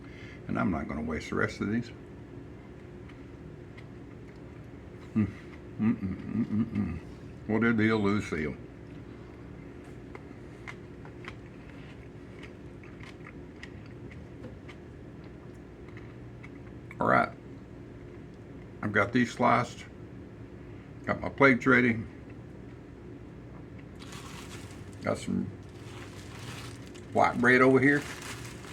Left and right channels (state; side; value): identical; both; correlation 1.00